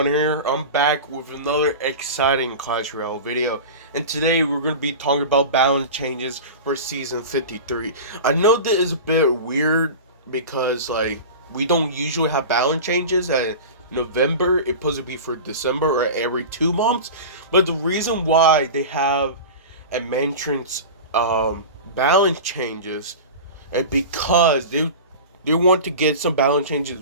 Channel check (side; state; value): both; inverted; correlation -0.31